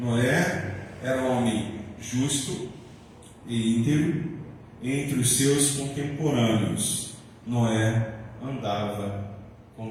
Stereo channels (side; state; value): both; identical; correlation 1.00